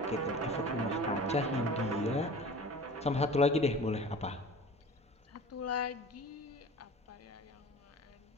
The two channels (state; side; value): normal; both; correlation 0.40